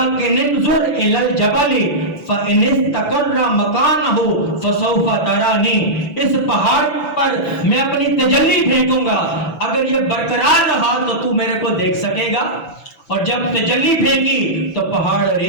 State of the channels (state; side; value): late; right; 6.0 ms